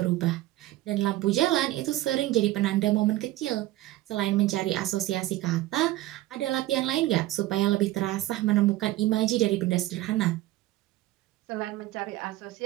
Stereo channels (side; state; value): left; quieter; 16.4 dB